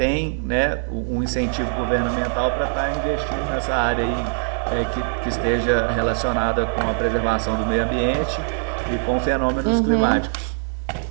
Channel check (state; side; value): silent; left; 59 dB below the other